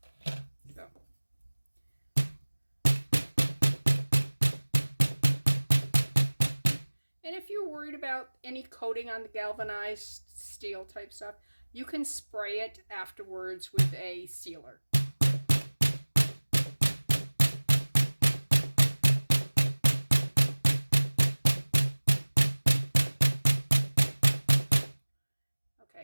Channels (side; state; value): both; inverted; correlation -1.00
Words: So. And if you're worried about any coating on the galvanized steel type stuff, you can spray it afterwards with a sealer.